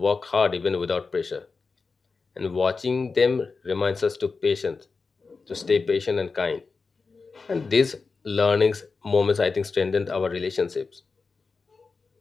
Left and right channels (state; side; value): quieter; right; 4.5 dB